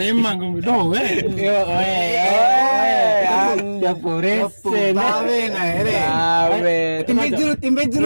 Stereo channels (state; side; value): inverted; both; correlation -1.00